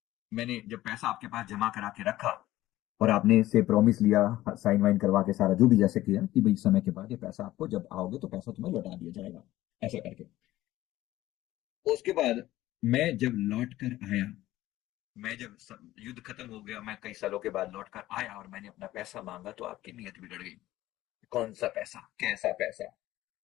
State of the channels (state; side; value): quieter; right; 15.6 dB